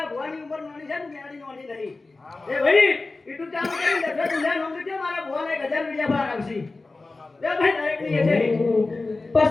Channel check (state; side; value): quieter; right; 3.5 dB